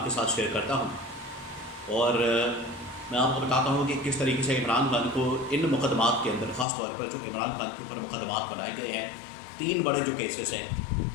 کے ساتھ شیئر کرتا ہوں، اور میں آپ کو بتاتا ہوں کہ کس طریقے سے عمران خان کو ان مقدمات کے اندر، خاص طور پر جو عمران خان کے اوپر مقدمات بنائے گئے ہیں، 3 بڑے جو کیسز ہیں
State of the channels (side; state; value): right; drops out; at 6.7 s